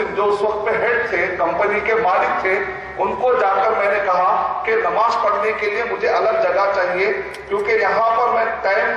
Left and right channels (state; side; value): identical; both; correlation 1.00